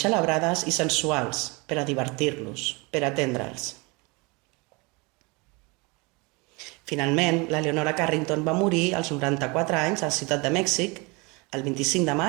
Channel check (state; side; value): quieter; left; 27.6 dB